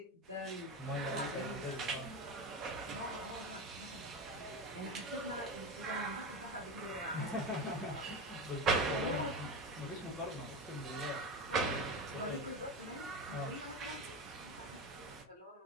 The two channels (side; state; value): both; normal; correlation 0.21